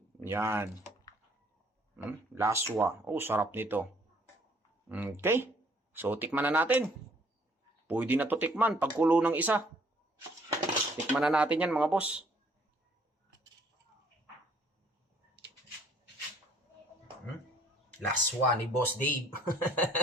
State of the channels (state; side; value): normal; both; correlation 0.61